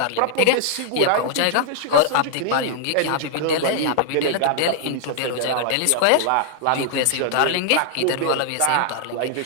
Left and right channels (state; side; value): different; both; correlation -0.01